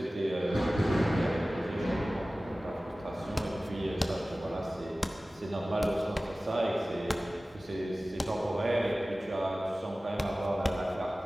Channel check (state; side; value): normal; both; correlation 0.97